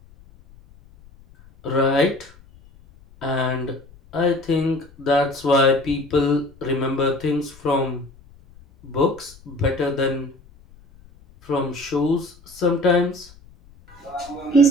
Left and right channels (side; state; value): left; noise; rumble, 25 dB below the sound